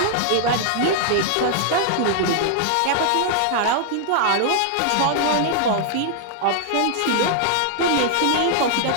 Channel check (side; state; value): both; different; correlation -0.01